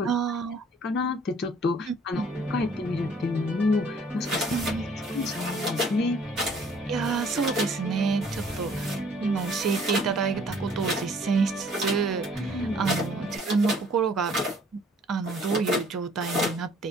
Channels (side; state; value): both; normal; correlation 0.58